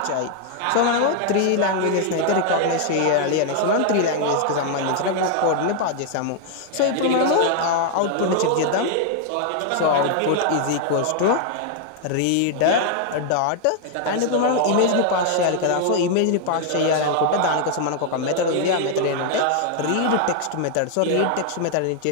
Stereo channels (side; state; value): both; different; correlation 0.00